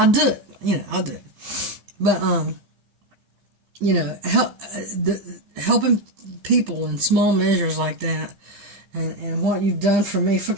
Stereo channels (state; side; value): late; left; 15 ms